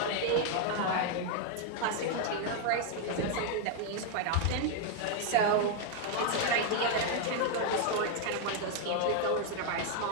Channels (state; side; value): different; both; correlation 0.00